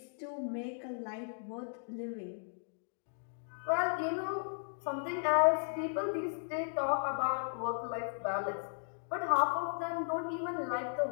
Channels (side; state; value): right; silent; digital silence